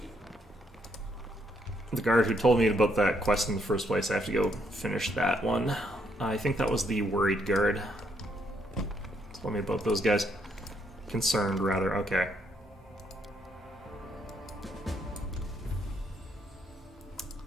The guard who told me about that quest in the first place, I have to go finish that one. I think that was the worried guard. Told me about those guys. Concerned, rather. Okay.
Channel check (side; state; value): both; normal; correlation 0.73